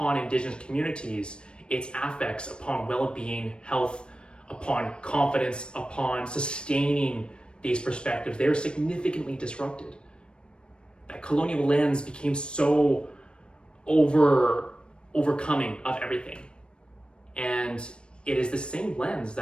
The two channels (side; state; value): right; late; 0.055 ms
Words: Indigenous communities, its affects upon well-being, health, upon confidence, upon sustaining these perspectives. They are significantly disrupted. That colonial lens became so overcoming of everything. And it is the same lens